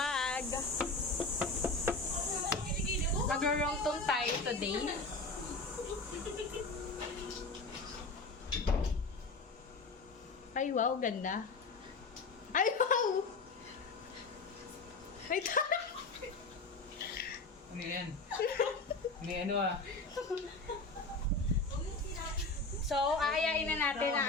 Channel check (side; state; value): right; quieter; 3.6 dB